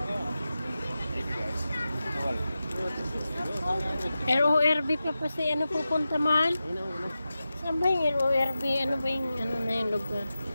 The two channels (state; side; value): inverted; both; correlation -0.93